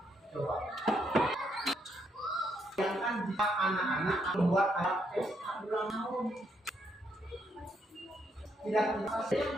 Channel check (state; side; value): normal; both; correlation 0.75